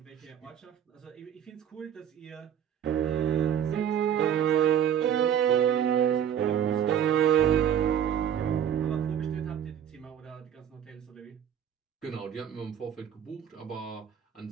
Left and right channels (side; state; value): left; quieter; 9.3 dB